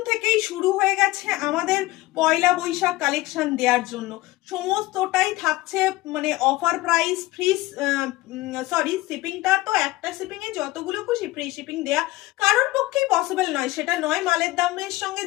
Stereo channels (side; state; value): right; quieter; 19.1 dB